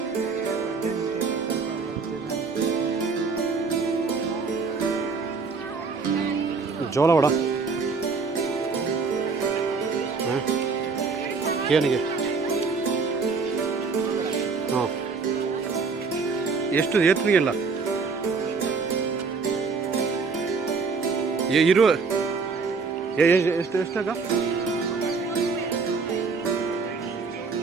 ಜೋಳ ವಡ ಏನಿಗೆ ಹಾಂ ಎಷ್ಟು ಏತ್ರಿಗೆಲ್ಲ ಇರುವ ಎಷ್ಟು ಎಷ್ಟಾಗ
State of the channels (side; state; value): left; quieter; 4.6 dB